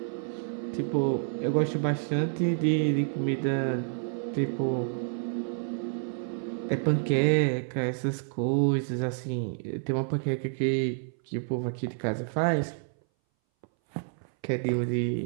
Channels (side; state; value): left; silent; 59 dB below the other